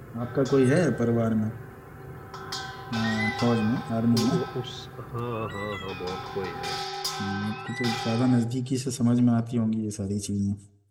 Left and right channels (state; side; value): identical; both; correlation 1.00